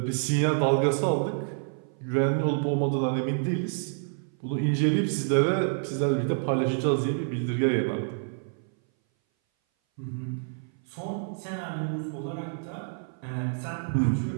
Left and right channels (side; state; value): left; silent; 58 dB below the other